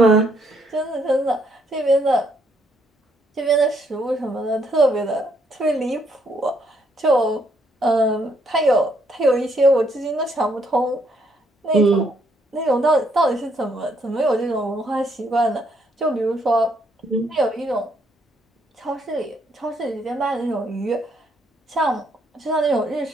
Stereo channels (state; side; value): normal; both; correlation 0.71